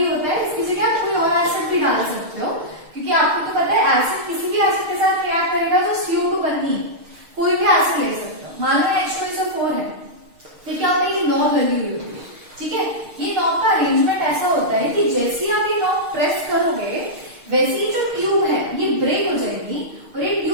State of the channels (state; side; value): late; left; 6.5 ms